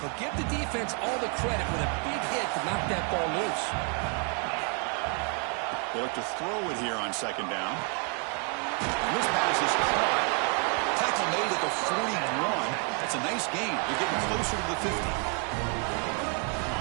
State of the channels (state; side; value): quieter; left; 38.7 dB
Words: But give the defense all the credit with a big hit to knock that ball loose. They look to throw it here on second down. And this pass is caught. Tackle made at the 41. That's a nice gain. They're getting closer to the 50.